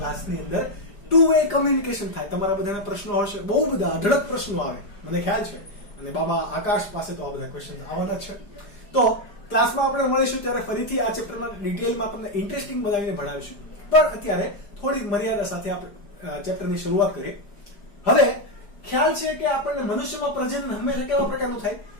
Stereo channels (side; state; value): right; late; 5.0 ms